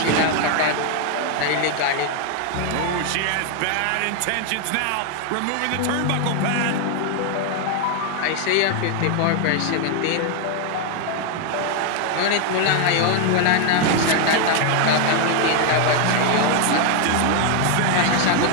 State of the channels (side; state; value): both; different; correlation 0.00